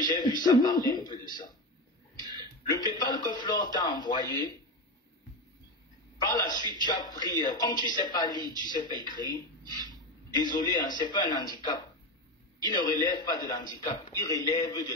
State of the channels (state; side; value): normal; both; correlation 0.19